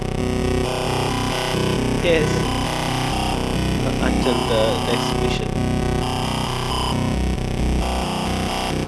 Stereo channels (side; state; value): both; identical; correlation 1.00